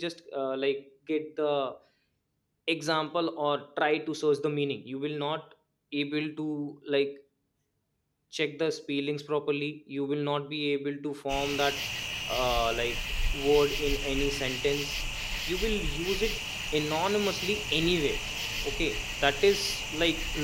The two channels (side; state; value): both; identical; correlation 1.00